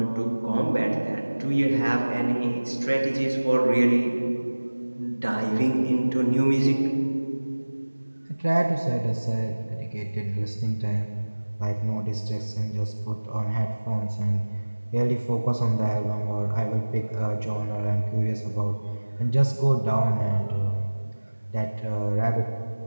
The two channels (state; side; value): inverted; both; correlation -1.00